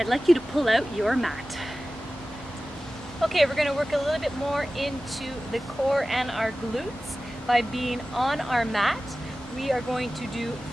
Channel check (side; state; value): both; normal; correlation 0.96